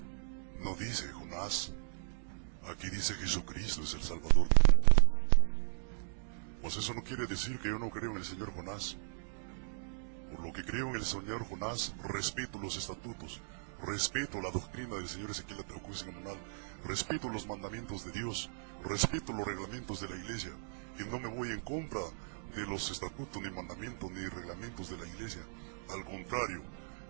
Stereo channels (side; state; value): left; silent; digital silence